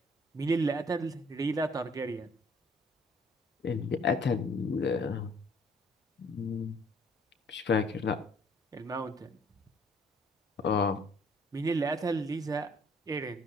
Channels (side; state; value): both; normal; correlation 0.60